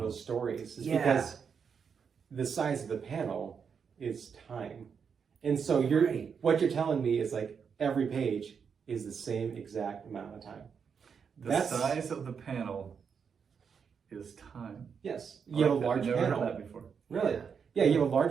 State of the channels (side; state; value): left; quieter; 6.5 dB